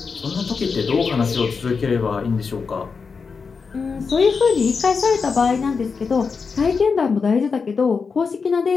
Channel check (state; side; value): quieter; right; 5.2 dB